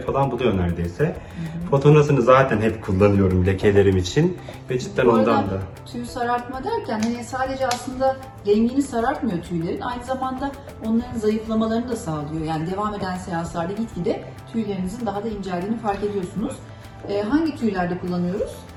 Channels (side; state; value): both; identical; correlation 1.00